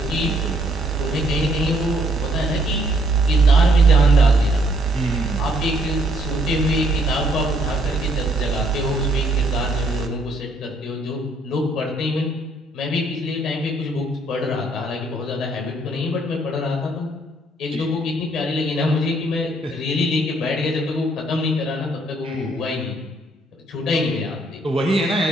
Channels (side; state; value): both; normal; correlation 0.67